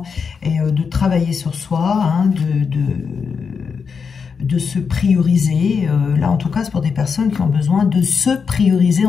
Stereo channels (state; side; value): quieter; right; 5.8 dB